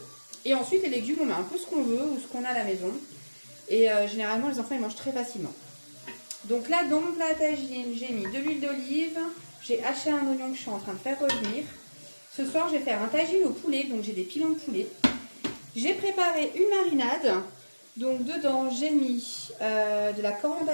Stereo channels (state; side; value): inverted; both; correlation -1.00